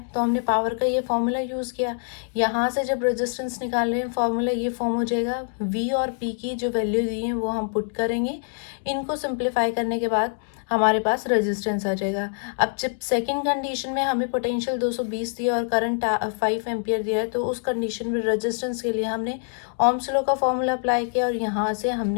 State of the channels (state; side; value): silent; right; 61 dB below the other